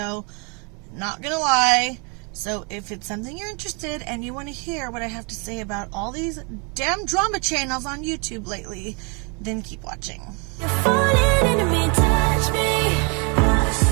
not gonna lie. So if it's something you're interested and you want to hear what I have to say about all these damn drama channels on YouTube lately, then keep watching. You're falling into me, touch me, I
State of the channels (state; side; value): quieter; left; 33.9 dB